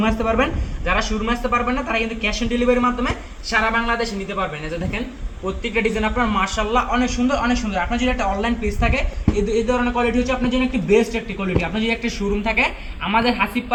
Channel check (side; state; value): both; identical; correlation 1.00